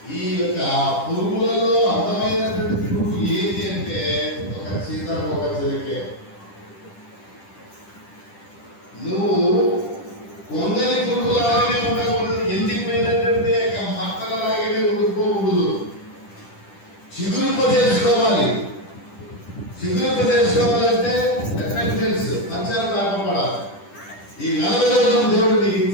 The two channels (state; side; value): late; right; 10 ms